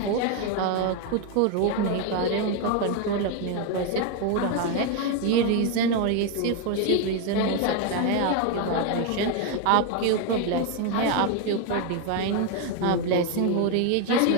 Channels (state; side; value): different; both; correlation 0.01